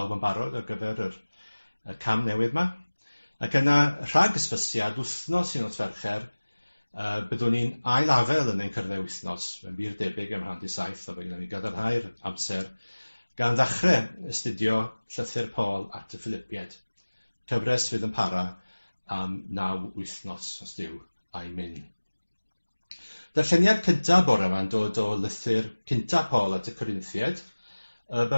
yn barod ar gyfer y cam newydd yma. Ac yna rhag ysbysiad wythnos un o'r Fercher, byddwn ni'n ailafel yn ein cyrddau wythnos. Fe'n bir debyg am 7:30, o byddwn ni'n gadarnhau'r amser gan ddechrau astudio llythyr Pawl at y Philippiaid. Cyfres fydd yn para am 9 wythnos, os Dduw a'i mynd. Darlleniad cyntaf bore yma'n dod o lythyr cyntaf Pawl at y Corinthiaid, y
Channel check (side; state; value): both; inverted; correlation -1.00